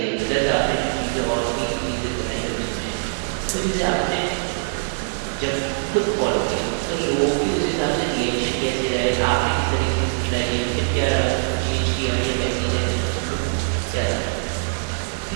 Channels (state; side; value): silent; left; digital silence